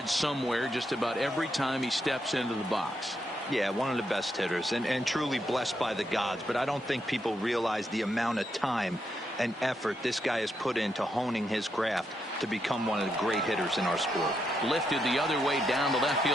somewhere just about every time he steps into the box. Yeah, one of the best hitters and truly blessed by the gods. But I don't think people realize the amount of time and effort this guy has put into honing his craft to become one of the great hitters in our sport. Lifted the other way down the left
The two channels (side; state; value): both; normal; correlation 0.81